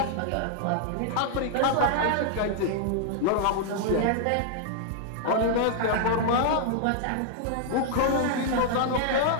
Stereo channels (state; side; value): different; both; correlation 0.00